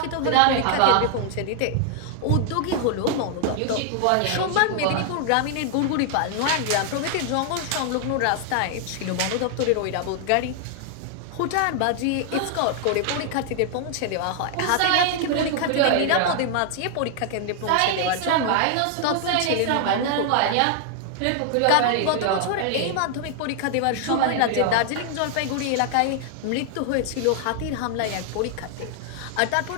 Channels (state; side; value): different; both; correlation 0.00